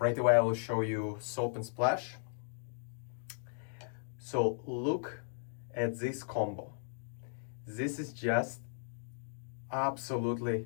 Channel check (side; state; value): right; silent; digital silence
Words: away I will show you soap and splash. So look at this combo. This is just